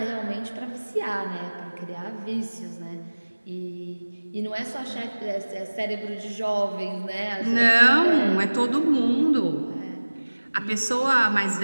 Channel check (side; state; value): both; inverted; correlation -1.00